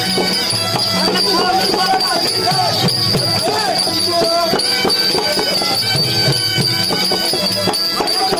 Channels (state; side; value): identical; both; correlation 1.00